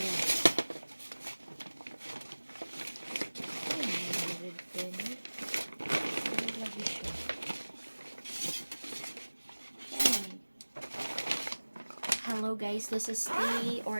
Hello guys, this is the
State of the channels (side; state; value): both; inverted; correlation -1.00